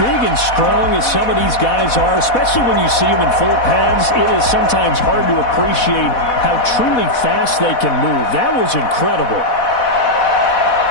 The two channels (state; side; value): late; right; 4.1 ms